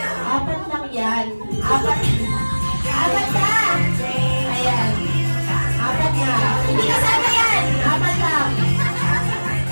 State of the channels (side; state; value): both; inverted; correlation -1.00